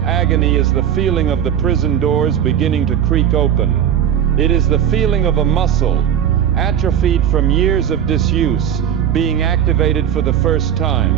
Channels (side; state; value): left; quieter; 9.6 dB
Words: agony is the feeling of the prison doors beginning to creak open. It is the feeling of a muscle, atrophied from years of disuse, being activated for the first